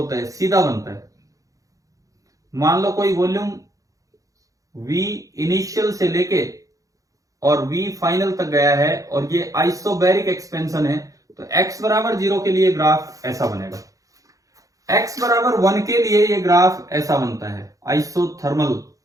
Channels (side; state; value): left; late; 0.16 ms